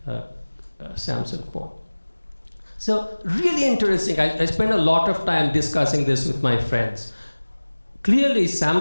Samsung phone. So really interesting. I spent a lot of time discussing this with my friends. Clearly,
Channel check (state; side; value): inverted; both; correlation -1.00